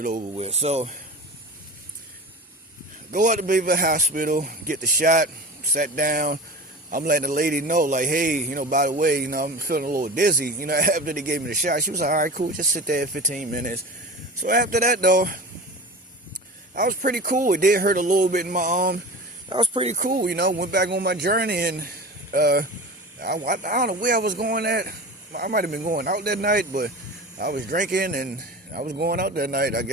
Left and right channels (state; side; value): normal; both; correlation 0.33